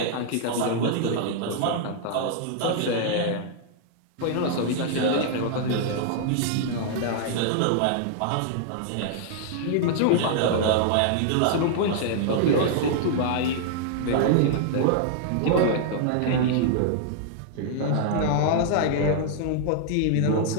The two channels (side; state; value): both; different; correlation -0.01